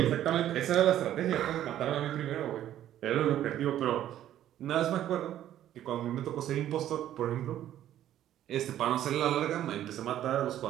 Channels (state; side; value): quieter; left; 11.9 dB